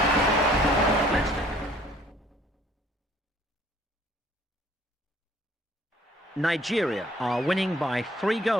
Nigeria are winning by 3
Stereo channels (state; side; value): normal; both; correlation 0.57